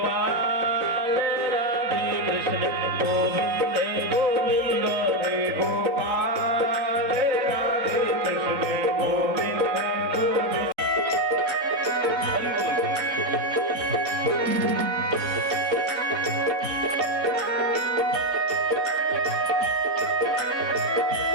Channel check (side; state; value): left; late; 3.8 ms